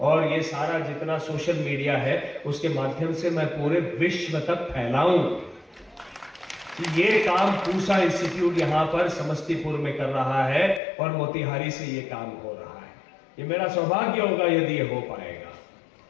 और ये सारा जितना सोशल मीडिया है उसके माध्यम से मैं पूरे विश्व तक फैलाऊं। कि ये काम पूसा इंस्टीट्यूट यहां पर समस्तीपुर में कर रहा है और मोतिहारी से ये काम हो रहा है। ये मेरा सौभाग्य होगा यदि ये हो पाएगा।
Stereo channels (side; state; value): right; drops out; at 10.8 s